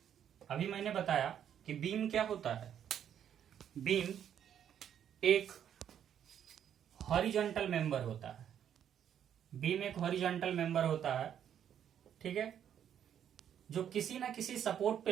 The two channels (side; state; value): left; quieter; 9.4 dB